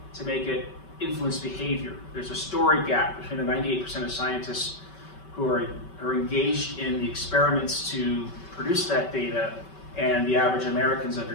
to make it influence behavior. There's a story gap between the 98% of scientists who are engaged in the experiments to produce that data and the average American's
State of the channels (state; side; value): late; right; 5.2 ms